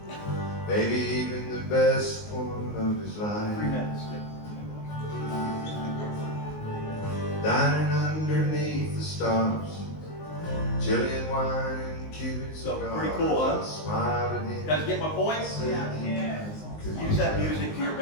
maybe even the best one of his life. 3 minutes. Dining underneath the stars, Chilean wine and Cuban cigars. Pretty cool, huh? Smiling in. Guys get my point? Yeah. Use that music to your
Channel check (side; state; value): right; late; 19 ms